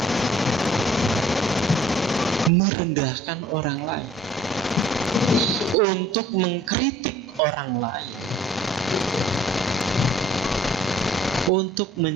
merendahkan orang lain, untuk mengkritik orang lain, untuk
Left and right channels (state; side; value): normal; both; correlation 0.55